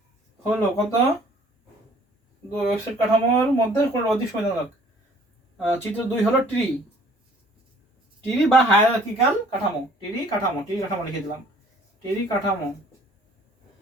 হলো কত ওয়েবসাইট কাঠামোর মধ্যে কোন অধিক সুবিধাজনক? চিত্র 2 হলো ট্রি বা হায়ারার্কিক্যাল কাঠামো। ট্রি কাঠামো লিখে দিলাম। ট্রি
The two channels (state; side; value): normal; both; correlation 0.55